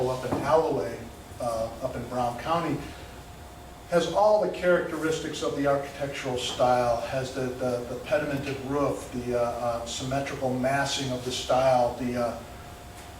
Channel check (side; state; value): both; identical; correlation 1.00